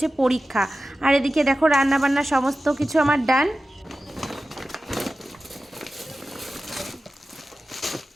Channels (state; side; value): normal; both; correlation 0.95